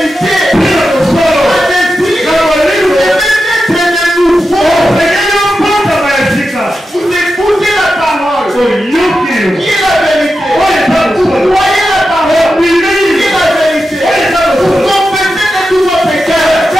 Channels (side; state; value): both; normal; correlation 0.90